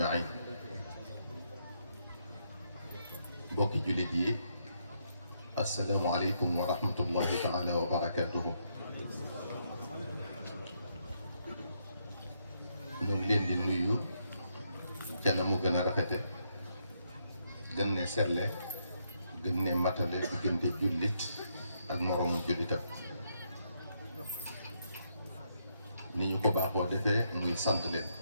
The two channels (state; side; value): inverted; both; correlation -0.77